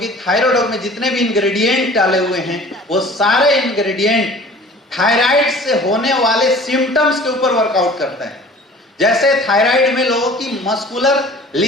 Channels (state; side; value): normal; both; correlation 0.46